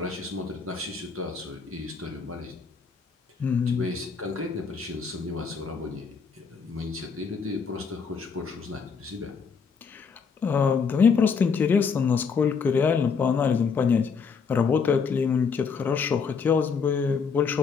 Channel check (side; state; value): right; quieter; 5.7 dB